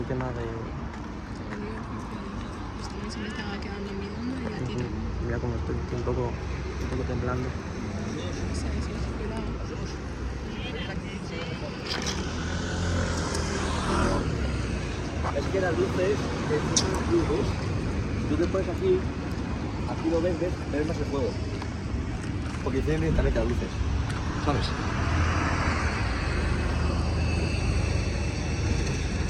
tema de... se me estaba quedando mirando y ya tira. Mira cómo estoy un poco temblando. Es que las luces, son las luces. Si tú te pones aquí lo ves, ves más el fuego. Porque tienen directamente las luces. ¿Sabes?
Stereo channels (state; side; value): identical; both; correlation 1.00